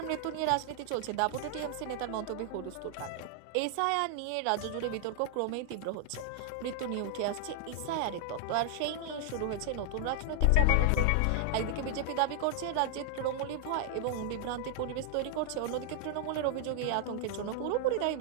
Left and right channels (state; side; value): different; both; correlation 0.00